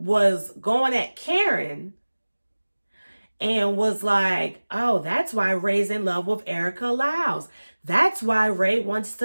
going at Karen and was like, oh, that's why Ray's in love with Erica Lyles. That's why Ray wants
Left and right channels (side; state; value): both; inverted; correlation -1.00